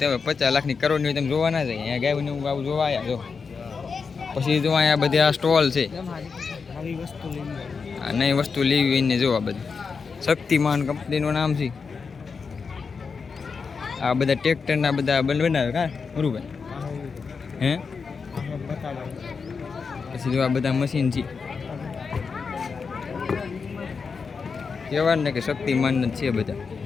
50 લાખની કરોડની હોય તમે જોવા ના જાય. અહીંયા ગાયને આવું જોવા આવ્યા જો. પછી જો અહીંયા બધી આ સ્ટોલ છે. આ નવી વસ્તુ લેવી એને જો. આ બધી શક્તિમાન કંપનીનું નામ છે. આ બધા ટ્રેક્ટરના બધા બનાવે કા મુરુભાઈ? હે પછી જો આ બધા મશીન છે. કહેવાય ને કે શક્તિમાન જ છે બધા.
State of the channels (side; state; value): right; quieter; 5.3 dB